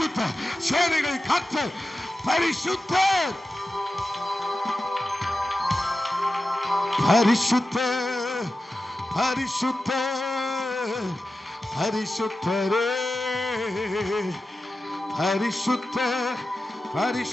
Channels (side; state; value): both; normal; correlation 0.93